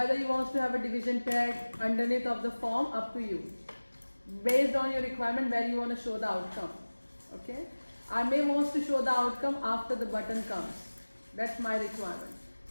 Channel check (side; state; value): both; inverted; correlation -1.00